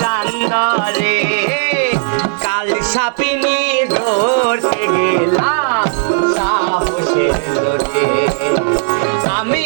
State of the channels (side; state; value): left; silent; digital silence